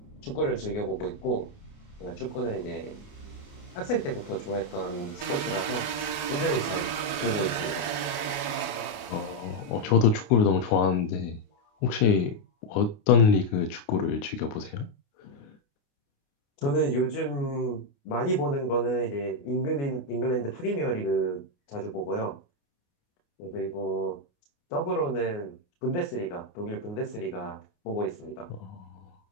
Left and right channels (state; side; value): late; right; 29 ms